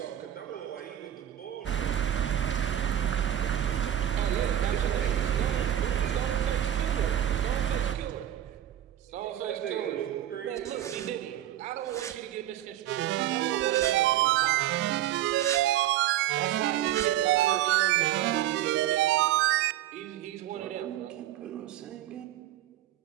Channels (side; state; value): left; quieter; 12.0 dB